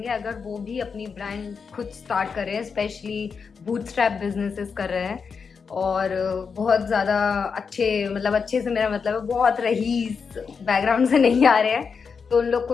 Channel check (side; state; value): right; quieter; 5.7 dB